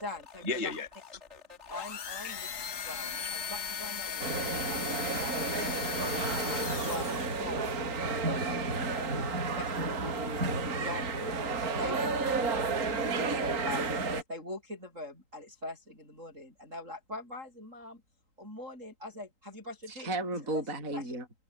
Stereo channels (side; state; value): left; late; 3.8 ms